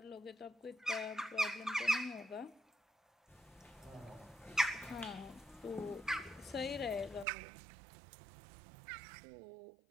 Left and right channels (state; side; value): drops out; left; at 7.2 s